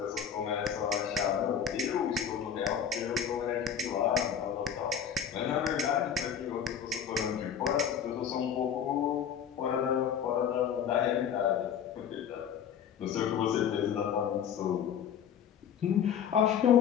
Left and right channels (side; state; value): right; quieter; 8.2 dB